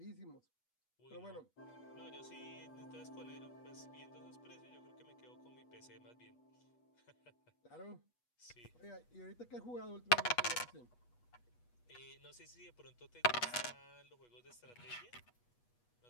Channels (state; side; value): late; right; 8.3 ms